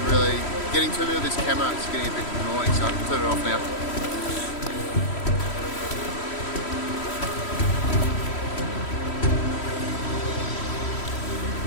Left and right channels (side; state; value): right; late; 3.1 ms